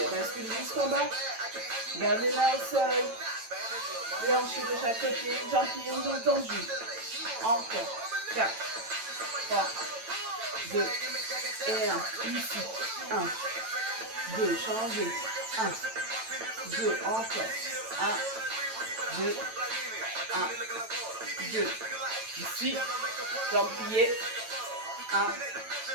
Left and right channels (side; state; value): left; late; 9.0 ms